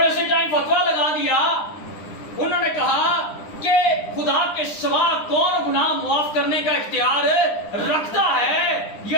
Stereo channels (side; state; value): right; late; 9.9 ms